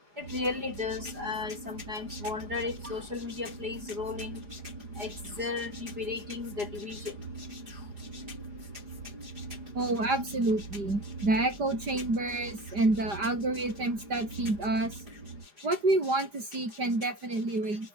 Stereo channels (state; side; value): late; left; 5.0 ms